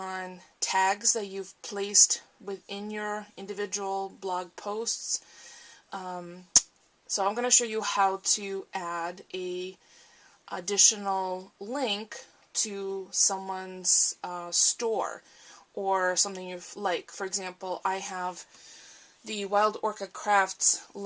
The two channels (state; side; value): identical; both; correlation 1.00